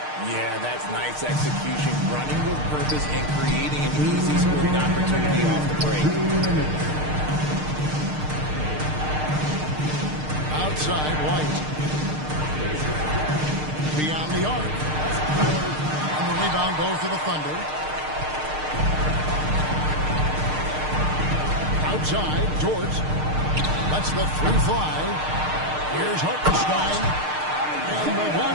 Yeah, that's nice execution. Running with purpose and creating an easy scoring opportunity off the break. Outside, White. Beyond the arc. And the rebound goes to the Thunder. Outside, George. Lets the three fly. Here's Hartenstein. And the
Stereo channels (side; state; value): left; late; 6.6 ms